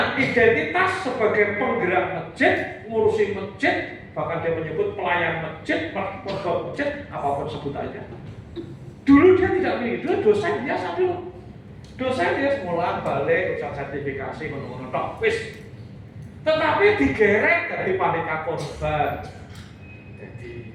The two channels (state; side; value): identical; both; correlation 1.00